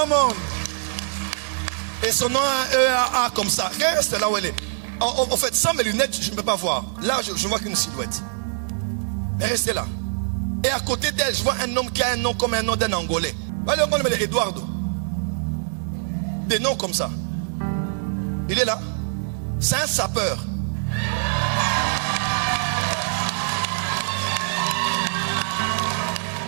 on. Et son nom a un E-A-A comme ça. Reste là où elle est. En fait, sans mes lunettes, je ne peux pas voir. Là, je ne vois qu'une silhouette. Mais restez là. Et à côté d'elle, je vois un homme qui a un nom comme un nom d'un Angolais. Le nom est Eduardo. Des noms comme ça. Il est là. C'est un sapeur.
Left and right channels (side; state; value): left; silent; digital silence